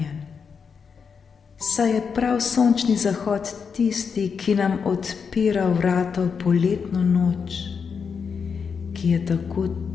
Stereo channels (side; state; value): right; quieter; 6.1 dB